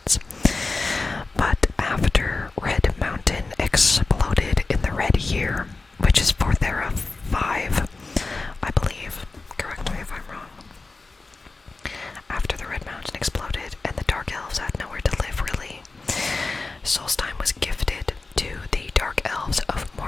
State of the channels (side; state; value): right; quieter; 3.7 dB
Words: But after Red Mountain